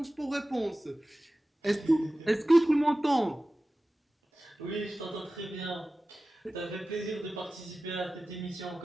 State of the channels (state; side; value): normal; both; correlation 0.96